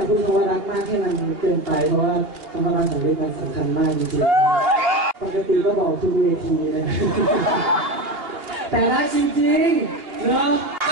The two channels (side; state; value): left; late; 2.8 ms